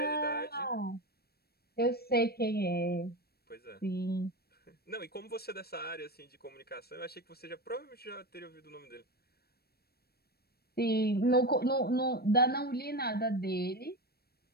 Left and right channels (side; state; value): right; late; 0.46 ms